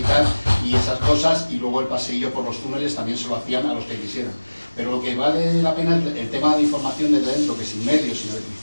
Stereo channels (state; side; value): inverted; both; correlation -1.00